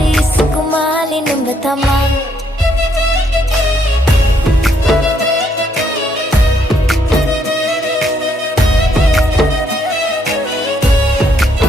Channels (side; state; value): both; normal; correlation 0.71